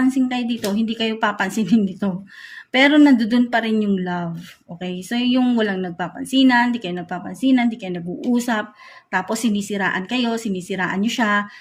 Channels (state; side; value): identical; both; correlation 1.00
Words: kayo dito, hindi kayo papansinin dito. Pero nandoon pa rin yung love. Okay? So, yung walang nagpapansinan, hindi kayo nagpapansinan, hindi kayo nag-uusap, tapos sinisiraan nyo siya,